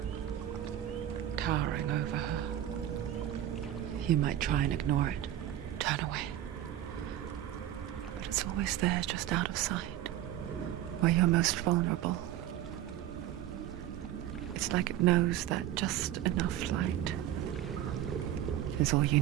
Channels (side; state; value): left; quieter; 12.3 dB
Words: towering over her. You might try and ignore it, turn away. But it's always there, just out of sight, where you're most vulnerable. It's like it knows that just enough light is all you